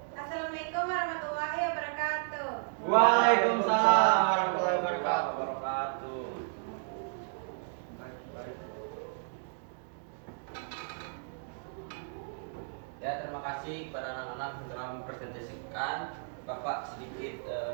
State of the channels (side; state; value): left; silent; digital silence